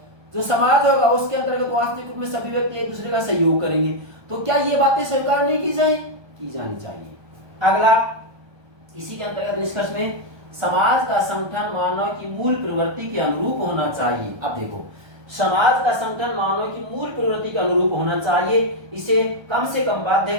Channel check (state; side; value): late; left; 1.2 ms